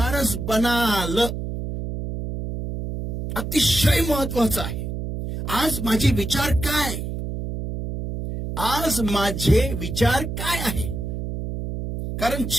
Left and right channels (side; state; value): right; noise; hum, 5 dB below the sound